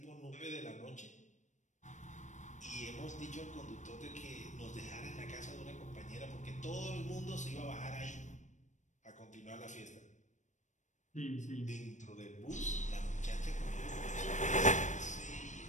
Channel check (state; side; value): late; right; 0.35 ms